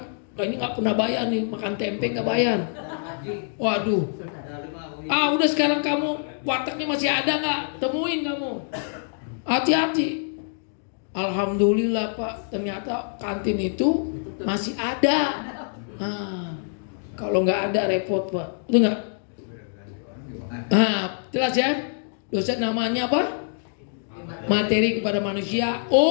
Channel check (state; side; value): silent; right; digital silence